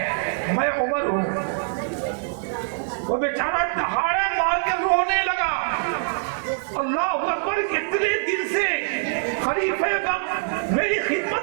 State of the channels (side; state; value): left; silent; 61 dB below the other